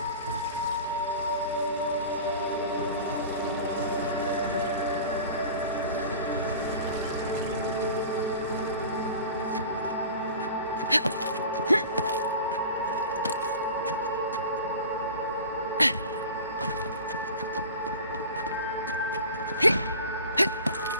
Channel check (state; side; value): inverted; both; correlation -0.39